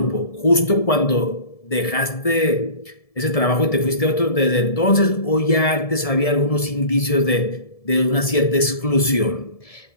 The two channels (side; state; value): right; late; 1.7 ms